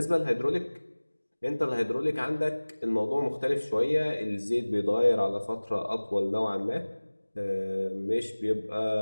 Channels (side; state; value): both; inverted; correlation -1.00